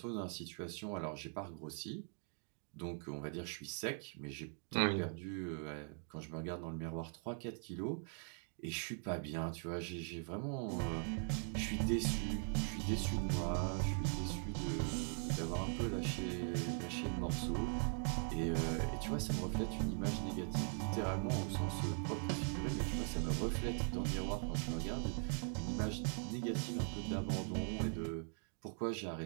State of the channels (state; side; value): silent; left; 50 dB below the other